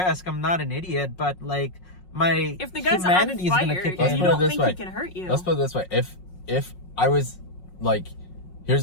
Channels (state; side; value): late; right; 5.5 ms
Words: I'm not an idiot, but if the guy's humanity on fire, is gonna kick you in. don't think he can hurt you. Let's put it this way: if I was